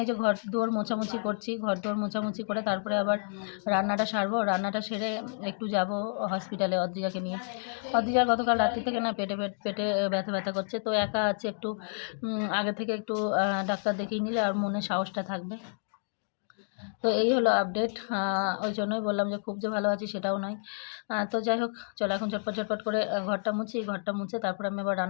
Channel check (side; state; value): right; silent; digital silence